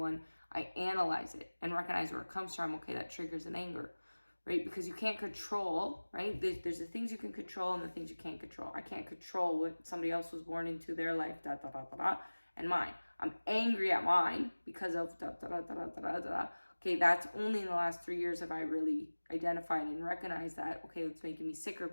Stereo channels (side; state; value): both; inverted; correlation -1.00